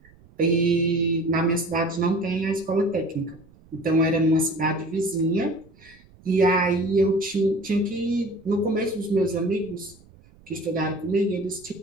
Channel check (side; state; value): right; noise; rumble, 26 dB below the sound